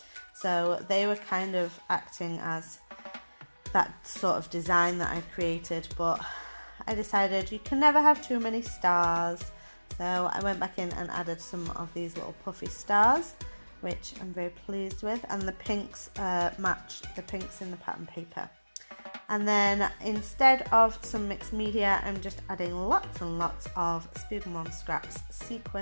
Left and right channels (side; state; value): both; inverted; correlation -1.00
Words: so they were kind of acting as that sort of design that I created, but I decided you can never have too many stars. So I went back in and added some of these little puffy stars, which I'm very pleased with, and the pinks match the pinks in the pattern paper. And then instead of some mixed media, I'm just adding lots and lots of Spooky Mom Scraps